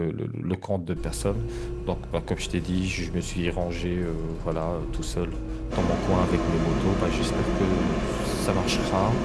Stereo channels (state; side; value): identical; both; correlation 1.00